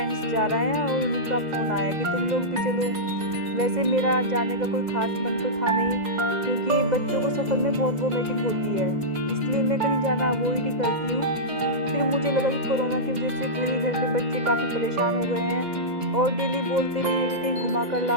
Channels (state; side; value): late; left; 2.0 ms